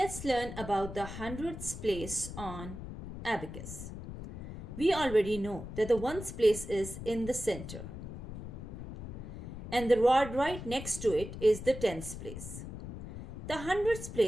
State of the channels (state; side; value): noise; left; rumble, 10 dB below the sound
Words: learn about the hundredths place on abacus. We already know that the ones place is in the center and the rod right next to it is the tens place. The hundredths